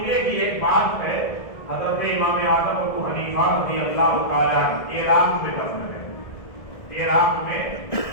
کی ایک بات ہے، حضرت امام اعظم ابو حنیفہ رضی اللہ تعالی عنہ عراق میں دفن ہے، عراق میں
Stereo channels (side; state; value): right; late; 1.7 ms